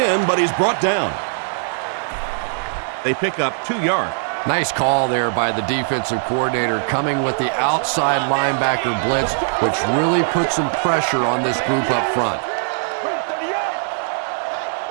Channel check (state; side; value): silent; left; digital silence